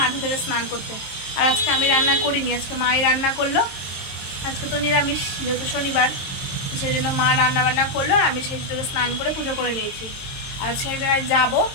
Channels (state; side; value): late; right; 22 ms